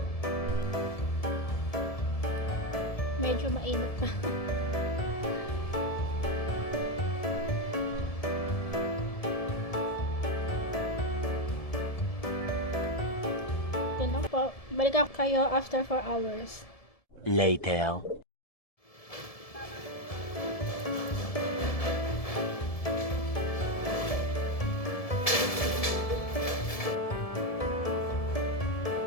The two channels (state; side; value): late; right; 1.7 ms